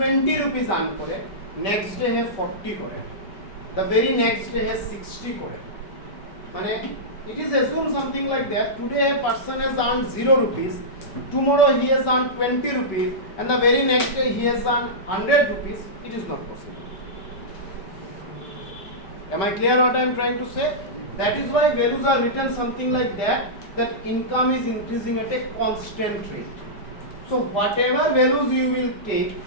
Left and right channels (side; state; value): right; late; 5.2 ms